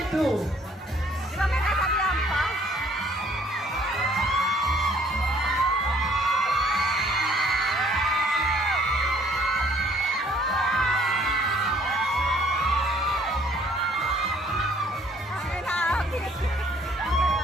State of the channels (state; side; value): normal; both; correlation 0.60